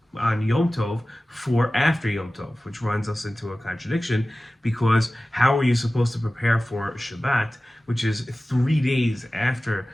on Yom Tov for after Yom Tov, which runs us into a contradiction, because how are you supposed to prepare for Shabbat, which is 3 days after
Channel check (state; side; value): normal; both; correlation 0.96